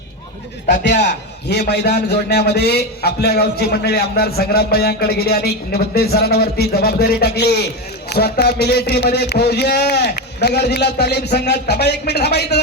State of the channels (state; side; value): normal; both; correlation 0.15